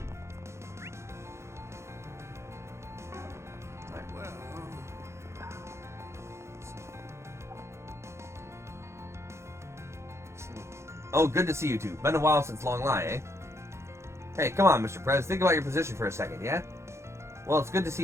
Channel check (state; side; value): late; left; 0.13 ms